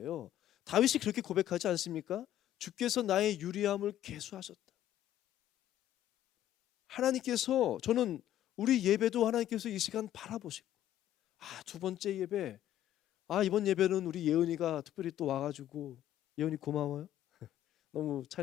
다윗이 그렇게 고백하지 않습니까? 주께서 나의 유리함을 계수하셨다. 하나님께서, 저는 우리 예배도 하나님께서 이 시간 바라보시고, 두 번째 예배, 이번 예배는 우리 예은이가 특별히 또 와가지고, 예은이 고마워요. 너무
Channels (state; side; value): quieter; right; 12.2 dB